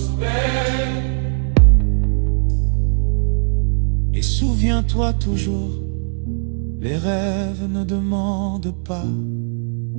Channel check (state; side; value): silent; left; digital silence